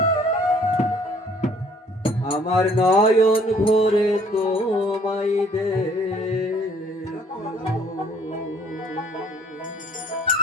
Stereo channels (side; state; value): both; normal; correlation 0.59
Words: আমার নয়ন ভরে তোমায় দেখব।